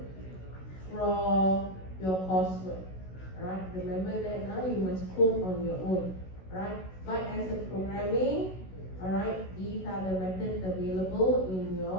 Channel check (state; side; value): late; right; 16 ms